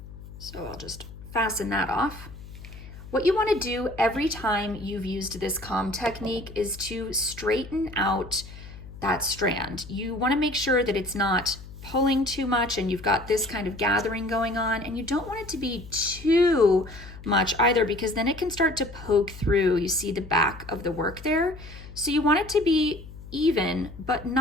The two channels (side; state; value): left; noise; hum, 15 dB below the sound